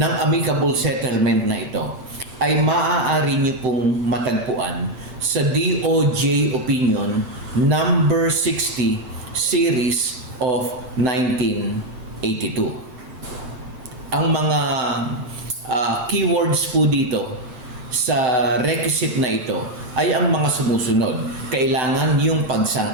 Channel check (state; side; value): late; left; 8.9 ms